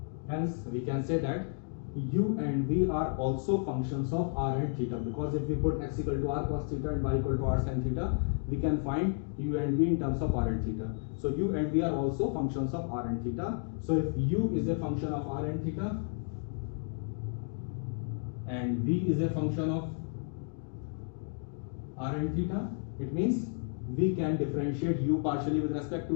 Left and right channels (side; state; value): right; silent; 56 dB below the other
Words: Hence, we can say that u and v are also functions of r and theta, because if we put x equal to r cos theta and y equal to r sin theta, we can find u and v in terms of r and theta. So u and v are also functions of r and theta. So if u is a function of r and theta and v is a function of r and theta, it means we can differentiate u partially with respect